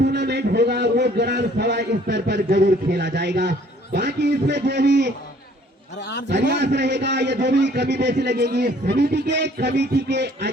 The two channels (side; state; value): both; normal; correlation 0.58